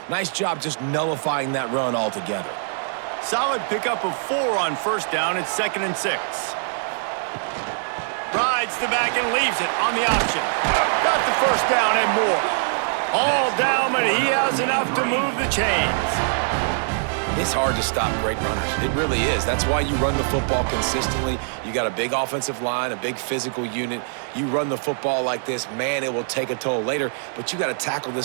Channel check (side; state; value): left; silent; digital silence